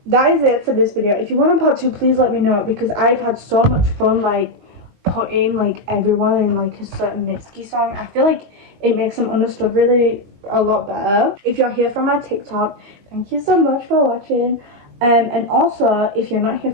that is it for this video. If you want a part 2, please let me know, because I've had so much fun like putting like everyone in like a certain Mitski song. I feel like it makes them understood really a lot better. If you're here from my TikTok, thank you so much for watching. And also, if you're not here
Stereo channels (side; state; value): left; late; 22 ms